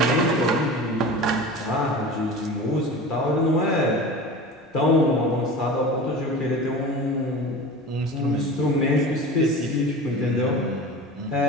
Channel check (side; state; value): both; normal; correlation 0.34